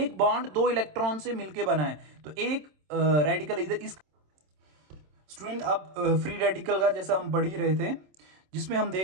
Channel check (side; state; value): left; late; 27 ms